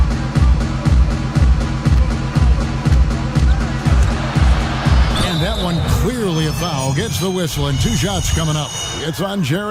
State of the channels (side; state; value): both; identical; correlation 1.00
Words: And that one clearly a foul. Gets the whistle, and 2 shots coming up. It's on